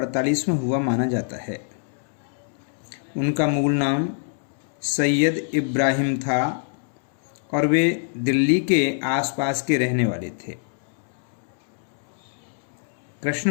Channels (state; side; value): silent; right; 62 dB below the other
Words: में हुआ माना जाता है। उनका मूल नाम सैयद इब्राहिम था और वे दिल्ली के आसपास के रहने वाले थे।